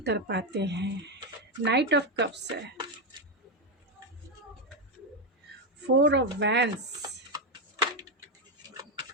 हैं। नाइट ऑफ कप्स है, फोर ऑफ वैंस,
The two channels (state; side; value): normal; both; correlation 0.06